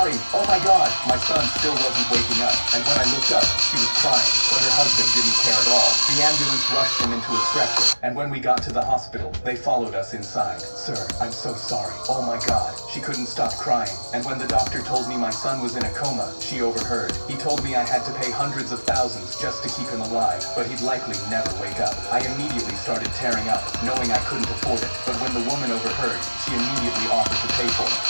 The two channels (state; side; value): inverted; both; correlation -1.00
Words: oh my God." My son still wasn't waking up, and when I looked up, she she was crying, but her husband didn't care at all. The ambulance rushed him into a stretcher, and when we got to the hospital, they followed us inside. Sir, I'm so sorry. Oh my God. She couldn't stop crying, and when the doctor told me my son was in a coma, she overheard. He told me I had to pay hundreds of thousands just to keep him alive, but he'd likely never wake up. I immediately started tearing up, knowing I couldn't afford it, but when the woman overheard, she immediately offered to pay for it.